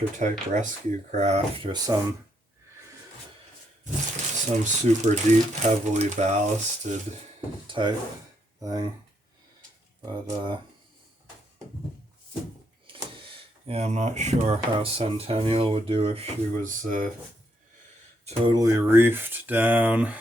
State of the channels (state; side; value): normal; both; correlation 0.76